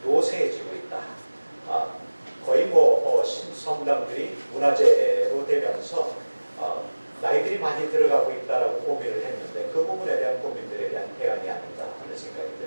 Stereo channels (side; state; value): both; inverted; correlation -1.00